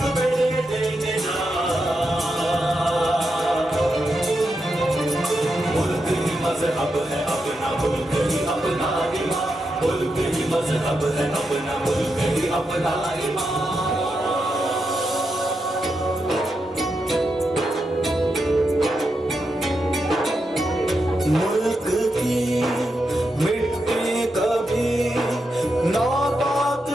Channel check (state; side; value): normal; both; correlation 0.86